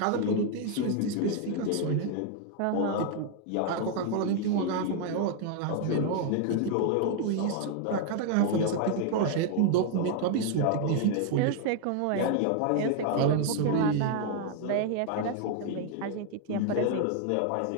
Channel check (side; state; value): both; different; correlation 0.00